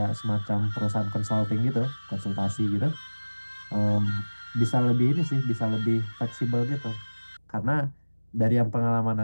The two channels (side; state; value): both; inverted; correlation -1.00